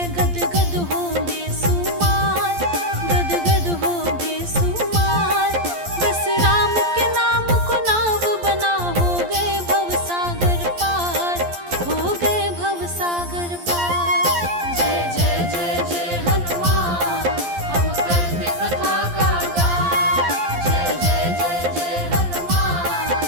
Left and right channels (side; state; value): left; late; 11 ms